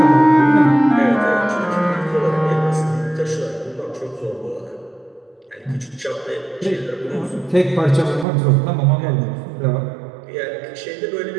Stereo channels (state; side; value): drops out; left; at 8.2 s